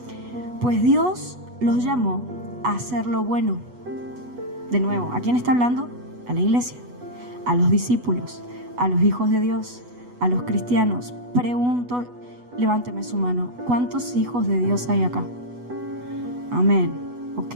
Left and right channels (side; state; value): left; late; 8.1 ms